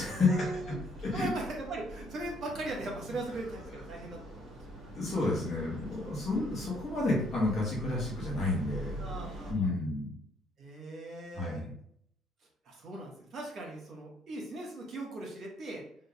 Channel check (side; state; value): both; normal; correlation 0.66